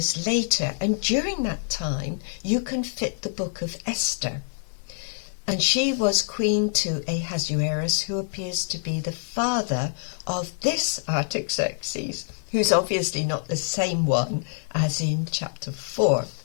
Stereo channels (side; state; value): right; silent; 61 dB below the other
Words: later, and during that time you can fit the book of Esther. And she was queen to Ahasuerus, who appears to be the father of this Artaxerxes, who's obviously not the same one as in chapter 4.